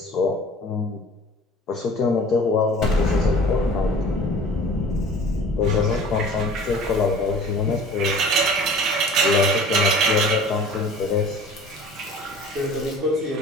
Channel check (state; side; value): normal; both; correlation 0.45